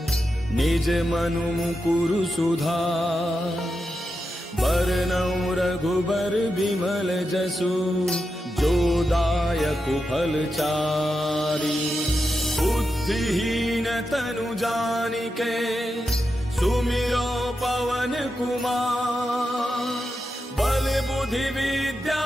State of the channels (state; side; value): normal; both; correlation 0.88